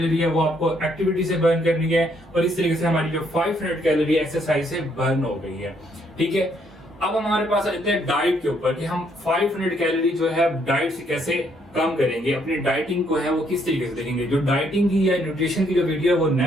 है वो आपको एक्टिविटी से बर्न करनी है, और इस तरीके से हमारी जो 500 कैलोरी एक्सरसाइज से बर्न हो गई है, ठीक है। अब हमारे पास आ जाते हैं डाइट के ऊपर कि हम 500 कैलोरी जो है डाइट से कैसे कम करेंगे, अपनी डाइटिंग को है वो किस तरीके से देखेंगे। जो डाइटिंग की या न्यूट्रिशन की जो वीडियो है वो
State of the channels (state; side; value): normal; both; correlation 0.70